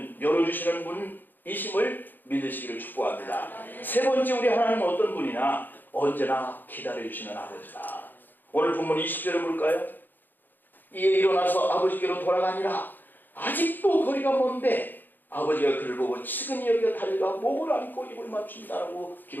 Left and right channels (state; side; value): late; right; 0.090 ms